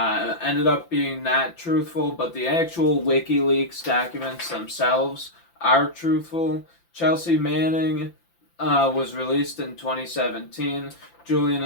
ended up being not truthful, but the actual WikiLeaks documents themselves are truthful. Chelsea Manning was released in 2017. Julian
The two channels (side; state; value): right; late; 5.9 ms